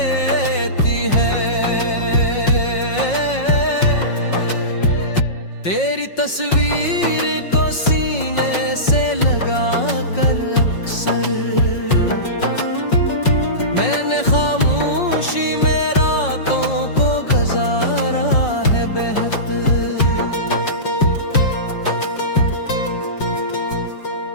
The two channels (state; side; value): late; right; 5.5 ms